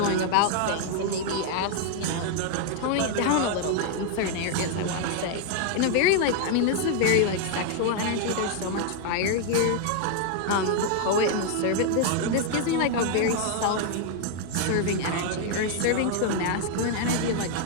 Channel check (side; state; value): both; different; correlation 0.00